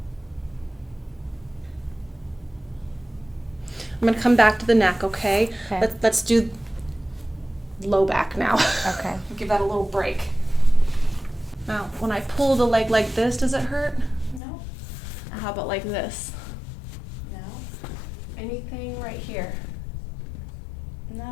I'm going to come back to the neck, okay? Okay. Let's do low back now. Okay. Give that a little break. Now, when I pull the leg like this, does it hurt? No. How about like this? No. Anything right here?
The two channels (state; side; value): drops out; right; at 14.4 s